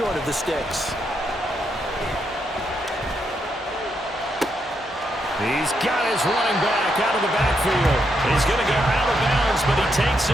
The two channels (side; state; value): both; normal; correlation 0.80